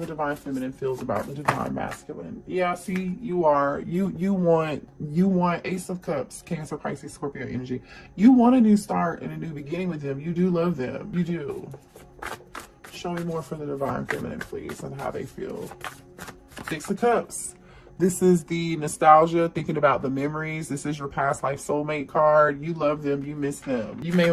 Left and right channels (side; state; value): both; identical; correlation 1.00